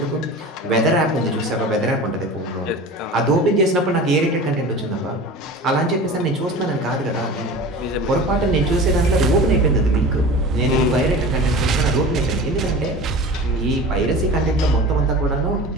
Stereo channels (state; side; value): normal; both; correlation 0.36